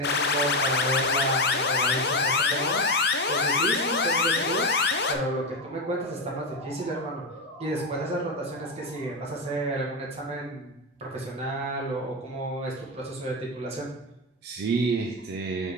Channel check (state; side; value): normal; both; correlation 0.12